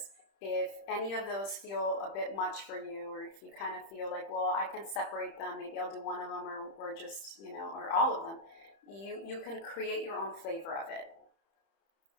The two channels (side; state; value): right; late; 30 ms